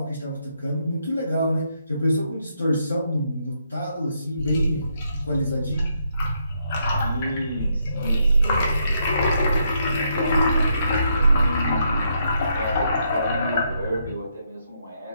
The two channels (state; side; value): inverted; both; correlation -0.76